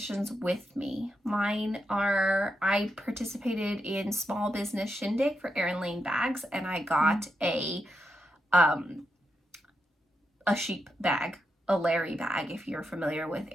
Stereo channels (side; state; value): both; normal; correlation 0.84